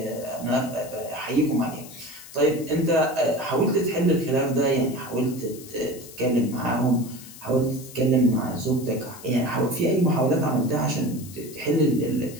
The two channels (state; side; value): noise; left; hiss, 17 dB below the sound